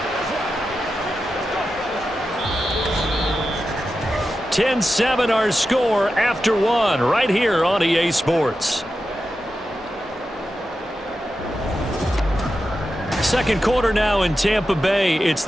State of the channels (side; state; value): both; normal; correlation 0.91